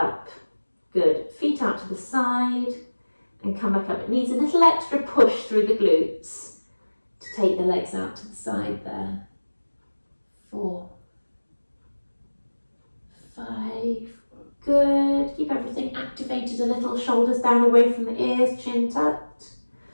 Good. Feet out to the side and come back up. It needs a little extra push through the glutes to take the legs out to the side there. 4, 5. Good. Keep everything activated a little. Shoulders down away from the ears, chin tucked.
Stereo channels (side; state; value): both; inverted; correlation -1.00